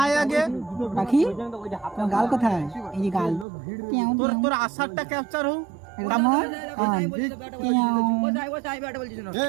পাখি? তোমার গাল কোথায়? এই যে গাল। তোর আশারটা ক্যাপচার হোক।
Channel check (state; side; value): drops out; left; at 3.5 s